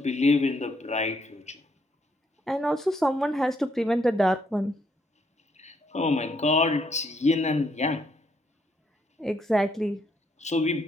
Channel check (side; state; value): both; normal; correlation 0.73